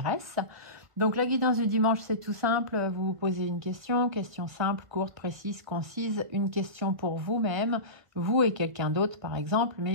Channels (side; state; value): left; late; 1.2 ms